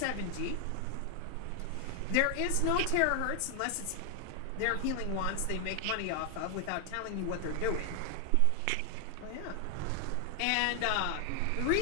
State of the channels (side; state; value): both; different; correlation 0.00